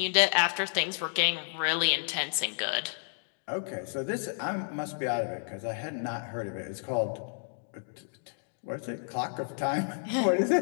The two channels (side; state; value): right; silent; digital silence